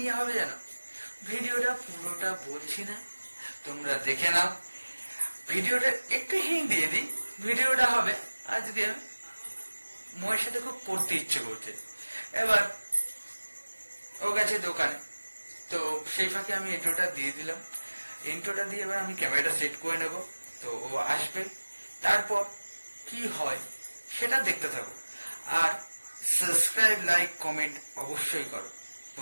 হবে জানো? ভিডিওটা পুরোটা বলছি না, তোমরা দেখে নাও। ভিডিওটা একটু হিং দিয়ে দিই। ভিডিওটা হবে আজকে মোয়ের সাথে খুব পড়তে ইচ্ছে করছে। এবার ও গেছে দোকানে, তো সেই ফাঁকে আমি ইন্ট্রোটা দিয়ে দিলাম। ইন্ট্রোটা দিয়ে এবার আমি ক্যামেরাটা সেট করে নেব। তো ও আসবে, তারপর কি হয় সেটা দেখতে থাকো। আর সাবস্ক্রাইব, লাইক, কমেন্ট অবশ্যই করো।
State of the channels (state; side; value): inverted; both; correlation -1.00